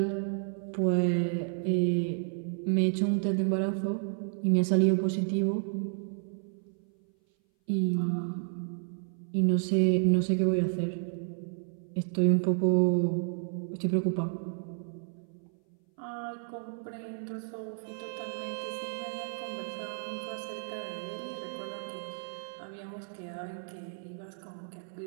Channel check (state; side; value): silent; left; 57 dB below the other